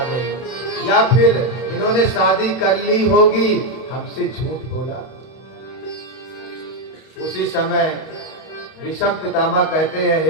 गई, या फिर इन्होंने शादी कर ली होगी, हमसे झूठ बोला। उसी समय भीष्म पितामह कहते हैं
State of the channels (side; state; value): right; late; 31 ms